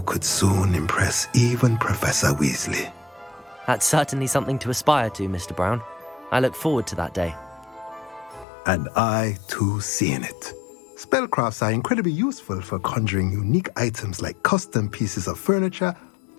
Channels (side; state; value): right; drops out; at 8.5 s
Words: could soon impress even Professor Weasley. That's certainly something to aspire to, Mr. Brown. I look forward to that day. And I, too, seeing it. Spellcrafts are incredibly useful for conjuring unique items like custom pieces of furniture